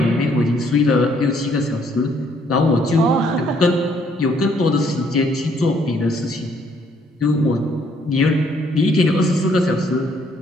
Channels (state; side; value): normal; both; correlation 0.66